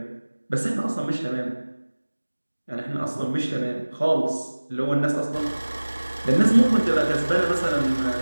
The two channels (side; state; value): both; inverted; correlation -1.00